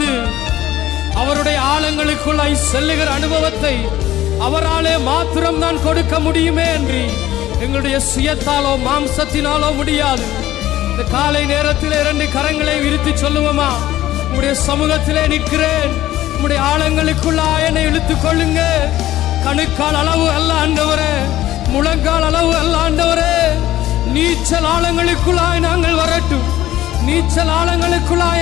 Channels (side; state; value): right; quieter; 14.4 dB